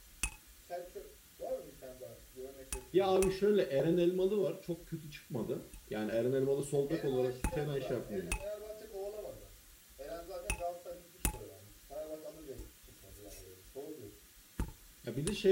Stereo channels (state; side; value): identical; both; correlation 1.00